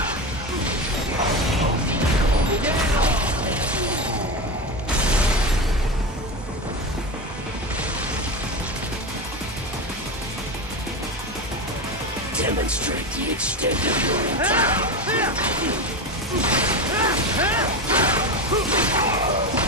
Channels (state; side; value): normal; both; correlation 0.20